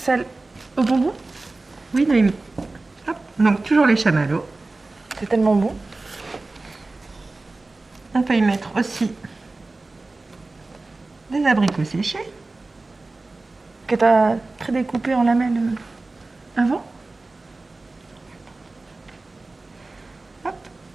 au bonbon. Oui, Noémie. Hop, donc toujours les chamallows. C'est tellement bon. On peut y mettre aussi des abricots séchés. Que tu as prédécoupé en lamelles avant. Hop,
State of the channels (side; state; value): left; quieter; 3.3 dB